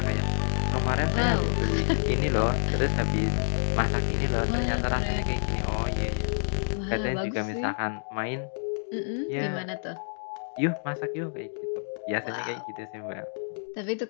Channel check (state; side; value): silent; right; digital silence